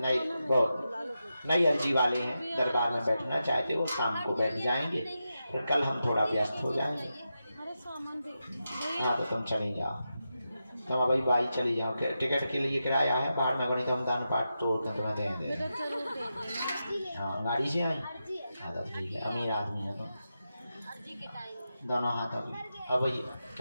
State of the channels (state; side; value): inverted; both; correlation -0.89